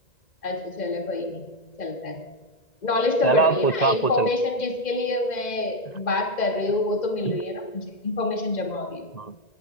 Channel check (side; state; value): right; late; 2.0 ms